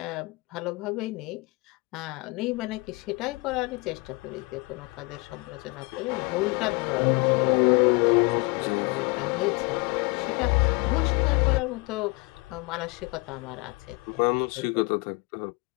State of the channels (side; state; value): right; quieter; 27.5 dB